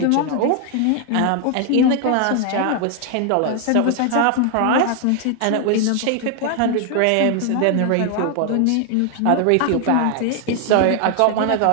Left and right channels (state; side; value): different; both; correlation 0.00